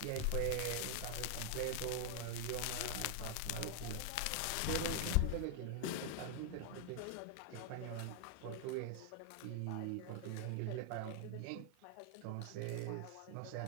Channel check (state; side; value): different; both; correlation 0.00